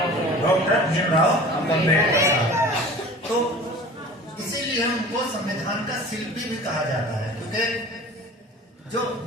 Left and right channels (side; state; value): both; normal; correlation 0.41